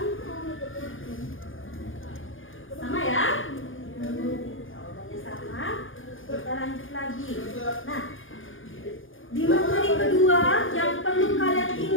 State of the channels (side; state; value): right; late; 0.58 ms